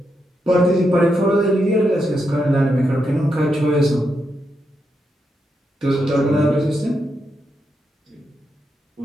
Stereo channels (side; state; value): both; normal; correlation 0.83